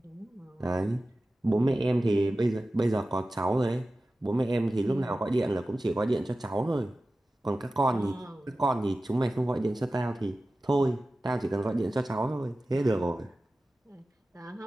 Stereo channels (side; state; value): both; normal; correlation 0.95